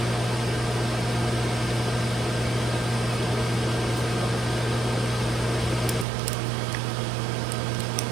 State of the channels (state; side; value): drops out; left; at 6.1 s